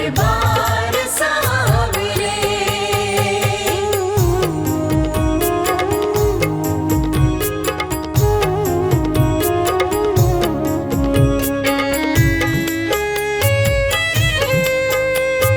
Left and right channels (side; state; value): both; identical; correlation 1.00